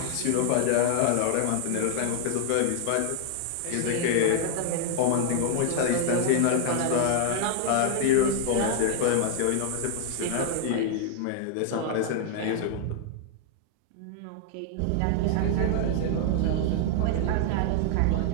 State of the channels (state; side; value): different; both; correlation 0.00